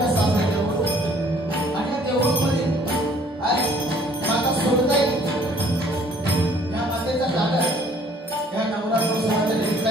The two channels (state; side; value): normal; both; correlation 0.58